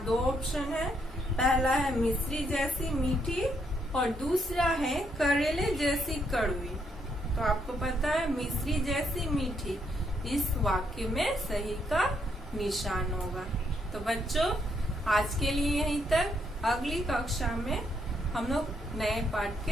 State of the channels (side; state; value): both; normal; correlation 0.75